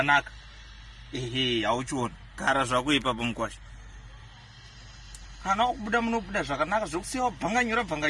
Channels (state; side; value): identical; both; correlation 1.00